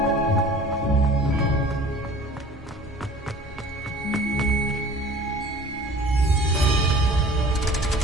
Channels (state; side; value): normal; both; correlation 0.46